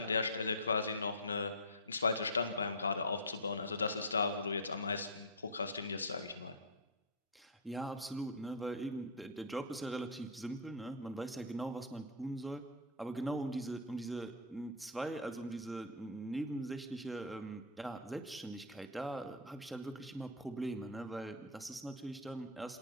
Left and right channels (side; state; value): both; normal; correlation -0.10